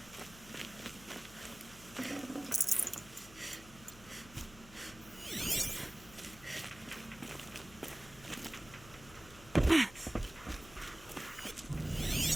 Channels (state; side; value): noise; left; hum, 19 dB below the sound